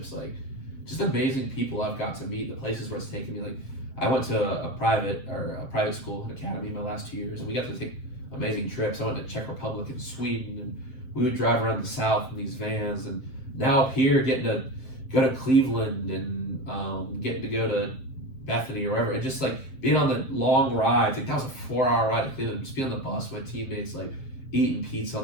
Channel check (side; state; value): right; late; 7.6 ms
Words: like just amazing people I've got to meet, the places where it's taken me. Like I went to a private school, an academy, my last 2 years, and we got to take amazing trips. I went to Czech Republic and Sweden, and we would drive around the South in these vans. And now up here, getting to go to Cleveland and getting to go to Bethany or wherever, and just like being on the long rides. Like that was a 4-hour ride to Cleveland. Just being on the bus with my teammates, like eating pizza on